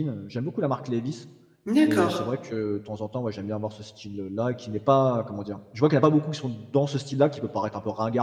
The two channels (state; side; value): identical; both; correlation 1.00